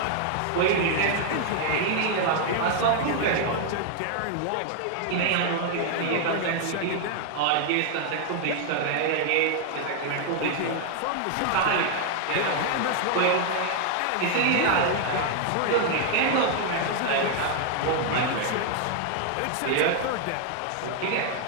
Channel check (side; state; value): both; different; correlation 0.00